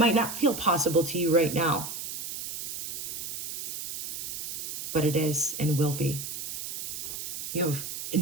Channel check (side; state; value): right; noise; hiss, 6 dB below the sound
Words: not feel possible to you right now, but it is and will be. You have a